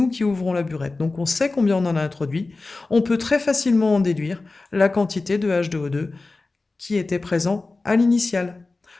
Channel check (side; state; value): right; quieter; 3.5 dB